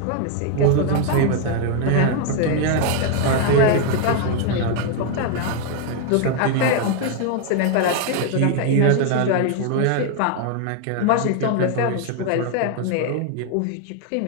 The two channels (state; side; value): different; both; correlation 0.00